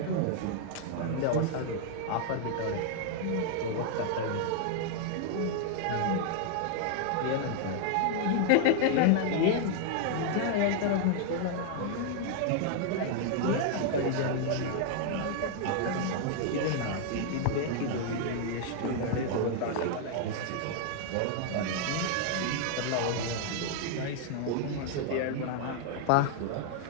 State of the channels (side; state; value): both; different; correlation -0.01